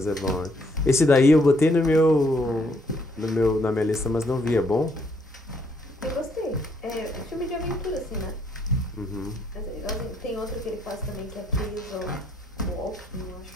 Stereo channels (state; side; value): normal; both; correlation 0.70